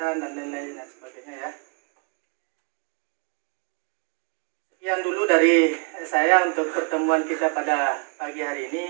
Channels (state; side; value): quieter; left; 35.7 dB